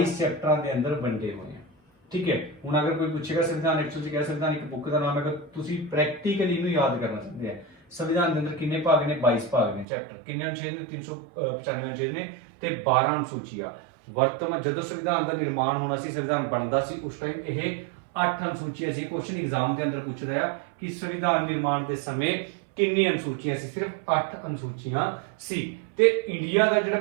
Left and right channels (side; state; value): left; drops out; at 9.9 s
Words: चैप्टर के अंदर बंटे हुए हैं। ठीक है, हुण अगर कोई पूछेगा संविधान एक्चुअली कह संविधान एक बुक का नाम है, तुसी प्रैक्टिकली इनू याद करना चाहते हैं। संविधान के अंदर कितने भाग ने? 22 भाग ने। चैप्टर कितने अनुच्छेद ने? 395 अनुच्छेद ने ते 12 अनुसूचियां। वर्तमान जदों संविधान का निर्माण होना सी, संविधान बनदा सी, उस टाइम यह 8 अनुसूचियां सी। क्वेश्चन एग्जाम के अंदर पूछदा है कि संविधान निर्माण के समय ਕਿੰਨੀ ਅਨੁਸੂਚੀਆਂ ਸੀ? ਸਿਰਫ 8 ਅਨੁਸੂਚੀਆਂ ਸੀ। ਤੇ ਇੰਡੀਆ ਦਾ ਜਿਹੜਾ